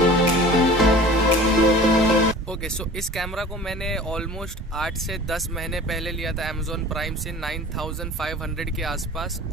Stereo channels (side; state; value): both; normal; correlation 0.43